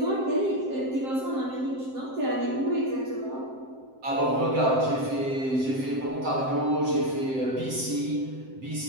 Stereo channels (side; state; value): left; late; 7.7 ms